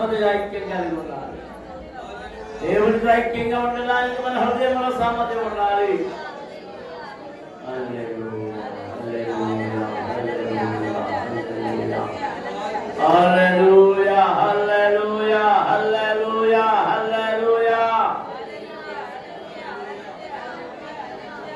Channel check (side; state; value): both; identical; correlation 1.00